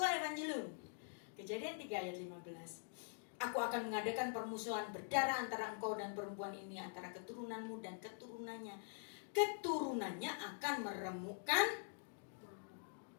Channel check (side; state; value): right; silent; digital silence